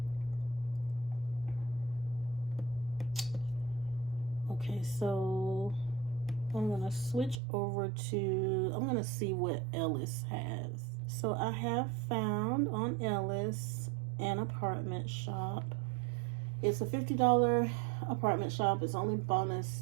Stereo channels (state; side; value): drops out; left; at 7.4 s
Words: Okay, so I'm gonna switch over to, I'm gonna see what Ellis has. So I have found on Ellis an apartment shop. It's a $50 apartment shop. It's only